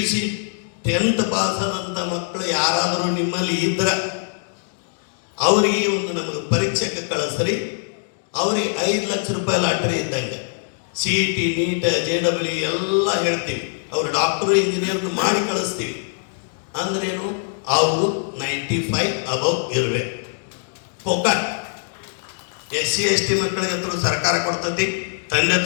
10th ಪಾಸ್ ಆದಂಥ ಮಕ್ಕಳು ಯಾರಾದರೂ ನಿಮ್ಮಲ್ಲಿ ಇದ್ರೆ ಅವರಿಗೆ ಒಂದು ನಮಗೆ ಪರೀಕ್ಷೆಗೆ ಕಳಿಸ್ರಿ, ಅವ್ರಿಗೆ 5 ಲಕ್ಷ ರೂಪಾಯಿ ಲಾಟ್ರಿ ಇದ್ದಂಗೆ. CET NEET JEE ಎಲ್ಲ ಹೇಳ್ತೀವಿ. ಅವ್ರು ಡಾಕ್ಟ್ರು ಇಂಜಿನಿಯರ್ನು ಮಾಡಿ ಕಳಿಸ್ತೀವಿ. ಅಂದ್ರೇನು, ಅವರು 95 ಅಬವ್ ಇರಬೇಕು. ಪೊಕಟ್ SC ST ಮಕ್ಕಳಿಗೆ ಅಂತೂ ಸರ್ಕಾರ ಕೊಡ್ತೈತಿ. ತಂದೆ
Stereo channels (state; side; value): silent; right; digital silence